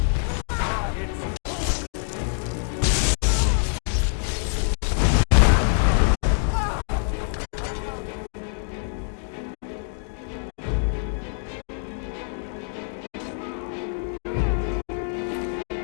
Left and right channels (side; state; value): right; silent; digital silence